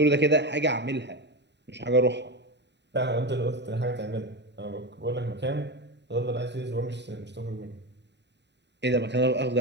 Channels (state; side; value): late; left; 0.50 ms